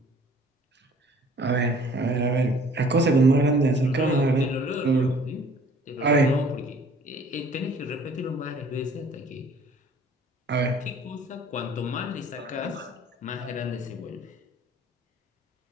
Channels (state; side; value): normal; both; correlation 0.53